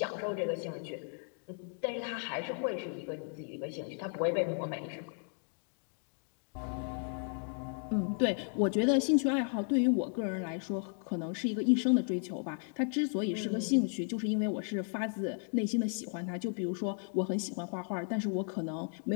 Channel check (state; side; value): silent; right; 55 dB below the other